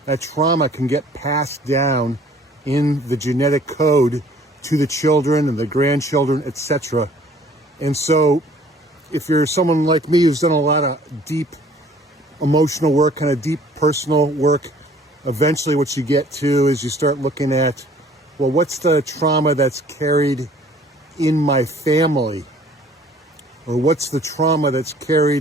that trauma can get passed down in the genetic code to the children and the grandchildren, etc. And so if you're someone like me who's done a lot of deep emotional work, kind of deep personal work, eventually what you get to is you start looking at, well, what's the trauma that's carried in my family? Or what's the trauma that's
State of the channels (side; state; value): both; normal; correlation 0.55